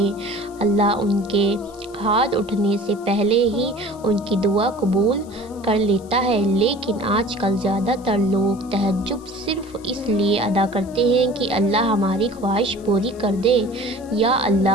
اللہ ان کے ہاتھ اٹھنے سے پہلے ہی ان کی دعا قبول کر لیتا ہے۔ لیکن آج کل زیادہ تر لوگ تہجد صرف اس لیے ادا کرتے ہیں کہ اللہ ہماری خواہش پوری کر دے، یا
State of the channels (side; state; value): left; noise; hiss, 25 dB below the sound